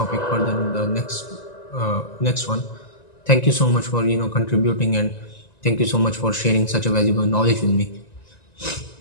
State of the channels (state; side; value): late; right; 1.9 ms